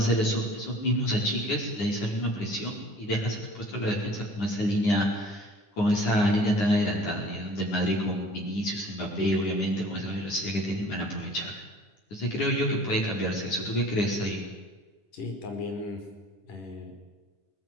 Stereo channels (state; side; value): late; right; 9.8 ms